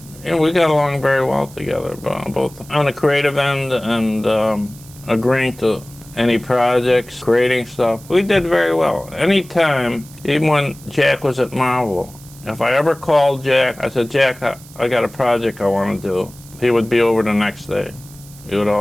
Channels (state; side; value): noise; right; hiss, 21 dB below the sound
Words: we got along very well together, both on the creative end and agreeing to any projects, creating stuff. We did very well. Anytime, even when Jack was at Marvel, if I ever called Jack, I said, Jack, I got a project I want to do. He would be over the next day. He would